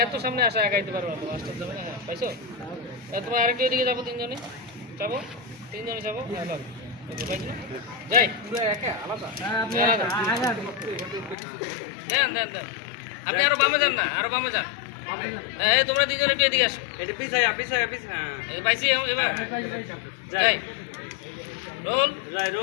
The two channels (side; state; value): right; drops out; at 11.4 s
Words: সামনে আসা একাইতে পারবো না তো মাস্টার যাবে না হ্যাঁ পাইছো তোমার আরেকটু এদিকে যাবো তিনজনে যাবো তিনজনে যাবো হ্যাঁ লাগ যাই দেন দেন দেন আপনি আরো বামে যান না আরো বামে যান এই তোমরা তিনজন একটু এদিকে আসো এটা পিছায় এই পাইছি এবার যাই রোল